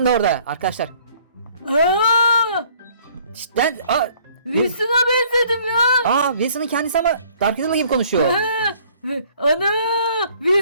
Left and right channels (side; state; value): both; inverted; correlation -0.59